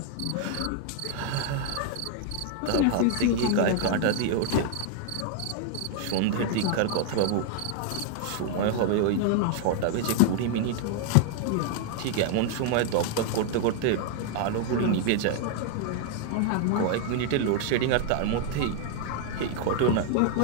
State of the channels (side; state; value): both; different; correlation 0.00